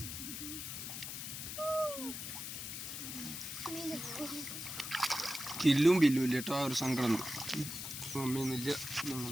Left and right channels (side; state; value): left; noise; hiss, 6 dB below the sound